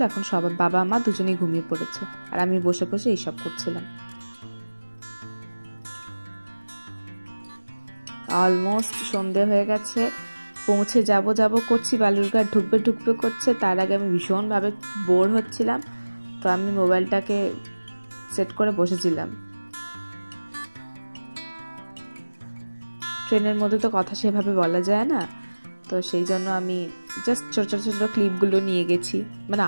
এখন সবাই বাবা মা দুজনেই ঘুমিয়ে পড়েছে, আর আমি বসে বসে এইসব করছিলাম। অলমোস্ট সন্ধে হয়ে গেছে, পৌঁছে যাব করছি, বালুরঘাট ঢুকবে করছে। তার আগে আমি ভীষণভাবে বোর হচ্ছিলাম, তো আমি মোবাইলটাকে সেট করে বসেছিলাম। ট্রেনের মধ্যে তো কথা সেভাবে বলা যায় না, তো সেই জন্য আমি জাস্ট ছোট ক্লিপগুলো নিয়ে গেছি। মানে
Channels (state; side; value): inverted; both; correlation -1.00